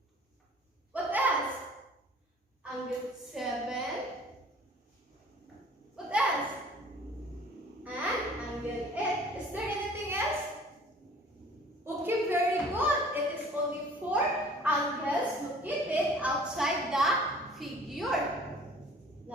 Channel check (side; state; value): both; normal; correlation 0.50